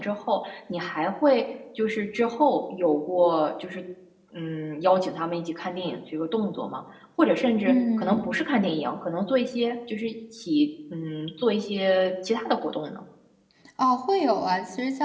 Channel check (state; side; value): identical; both; correlation 1.00